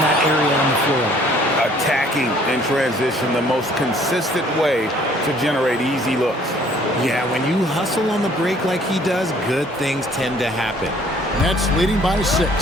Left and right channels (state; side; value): normal; both; correlation 0.58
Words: that area on the floor. Attacking in transition, the most consistent way to generate easy looks. Yeah, when you hustle on the break like he does, good things tend to happen. Nets leading by 6.